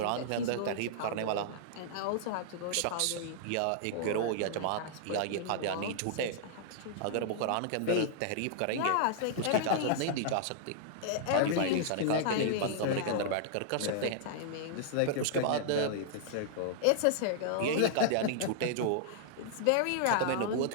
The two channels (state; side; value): different; both; correlation -0.01